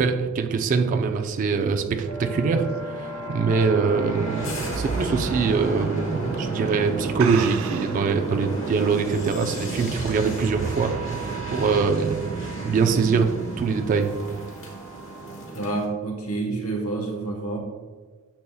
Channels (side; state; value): left; quieter; 4.4 dB